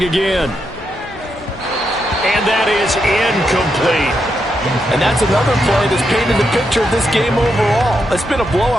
again. And that is incomplete. And that's another play that's painted the picture of this game overall. It's been a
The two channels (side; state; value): both; normal; correlation 0.82